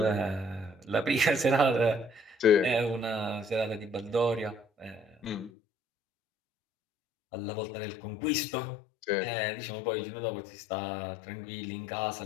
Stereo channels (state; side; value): drops out; right; at 5.5 s